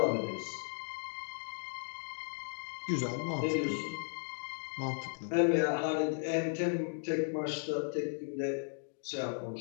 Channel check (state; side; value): silent; right; digital silence